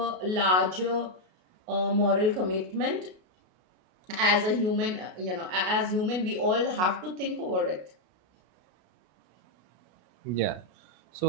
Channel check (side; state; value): left; late; 33 ms